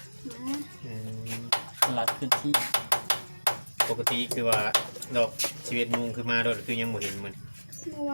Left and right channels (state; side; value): inverted; both; correlation -1.00